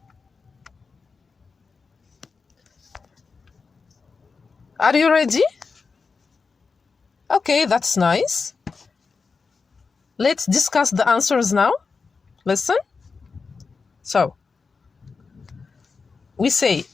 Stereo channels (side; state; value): right; quieter; 4.8 dB